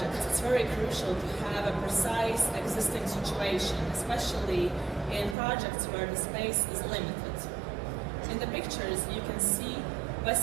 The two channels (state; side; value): drops out; left; at 5.4 s